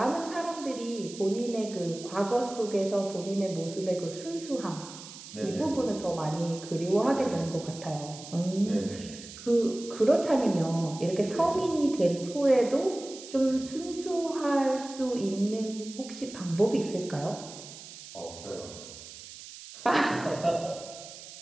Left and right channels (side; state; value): right; noise; hiss, 15 dB below the sound